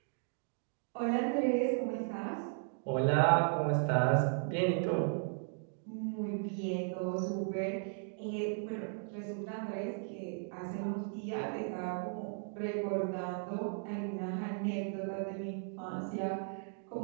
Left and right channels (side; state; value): left; silent; 54 dB below the other